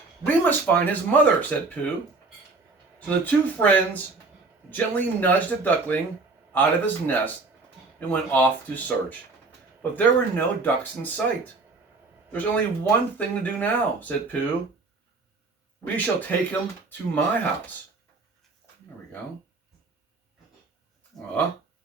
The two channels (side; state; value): left; quieter; 3.8 dB